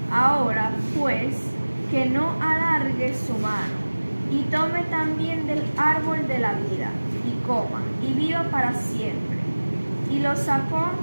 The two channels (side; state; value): both; inverted; correlation -1.00